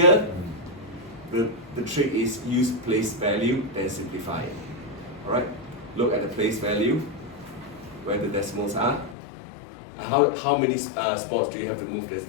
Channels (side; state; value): right; drops out; at 9.2 s